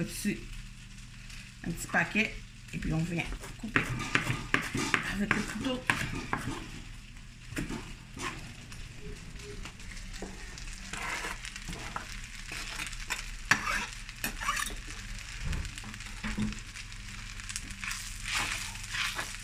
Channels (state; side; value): identical; both; correlation 1.00